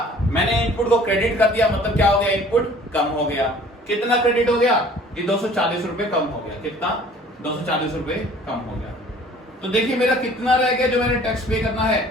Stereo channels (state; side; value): normal; both; correlation 0.51